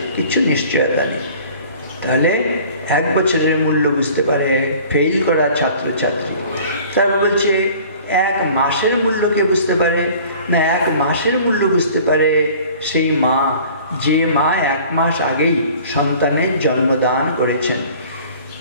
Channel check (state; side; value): inverted; both; correlation -0.48